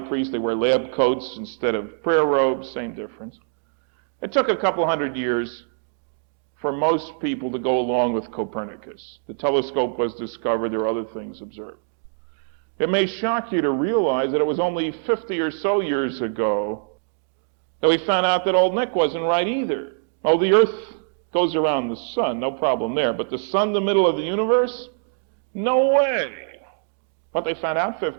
They wear lab coats instead of prayer robes, same difference. It took a couple hundred years for most people to go along with Copernicus. The telescope was discovered. There were other things observed. It may shock you to realize that it was only 50 or so years ago that we found out that old Nick wasn't right either. Oh, the Earth goes around the sun, no problem there. But the sun, the middle of the universe? No way. What they found out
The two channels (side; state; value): left; silent; digital silence